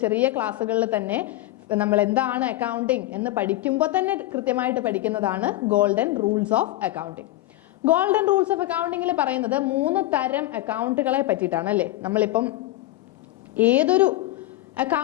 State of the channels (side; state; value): right; quieter; 16.3 dB